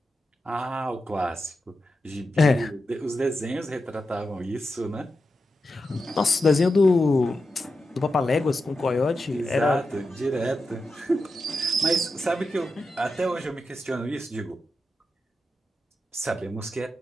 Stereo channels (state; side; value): normal; both; correlation 0.89